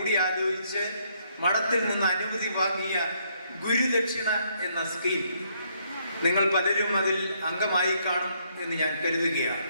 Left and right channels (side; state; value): both; inverted; correlation -0.71